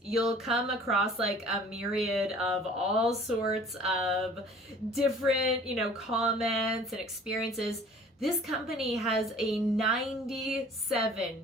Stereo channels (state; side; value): normal; both; correlation 0.49